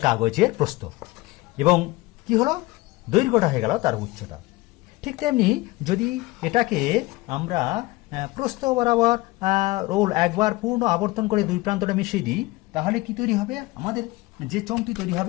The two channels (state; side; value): quieter; right; 20.9 dB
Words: কাগজের প্রস্থ, এবং কি হলো দৈর্ঘ্যটা হয়ে গেল তার উচ্চতা। ঠিক তেমনি যদি এটাকে আমরা প্রস্থ বরাবর রোল একবার পূর্ণ আবর্তন করে দুই প্রান্তটা মিশিয়ে দিই, তাহলে কি তৈরি হবে? আমাদের যে চোঙটি তৈরি